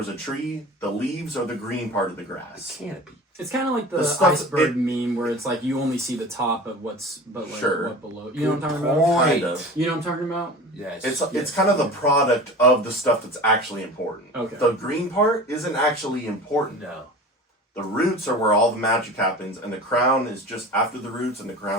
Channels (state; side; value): normal; both; correlation 0.36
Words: a tree, the leaves are the green part of the grass. Canopy. It's kind of like the, The stuff- iceberg meme where it's like you only see the top of what's, but like Sure. what below. You know what I'm talking about? Point. Kind of. You know what I'm talking about? Yes. It's kind of the product of the stuff that's actually important. Okay. The green part isn't actually important. No. The roots are where all the magic happens, and the crown is just after the roots, and the